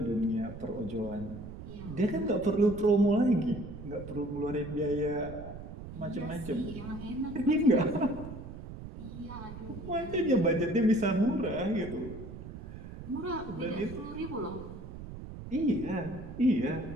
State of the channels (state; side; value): noise; right; rumble, 11 dB below the sound